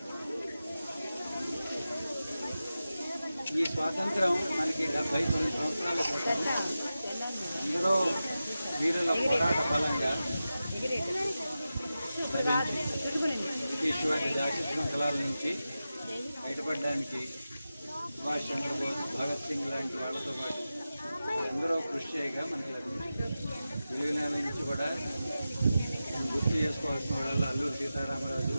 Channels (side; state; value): both; inverted; correlation -0.93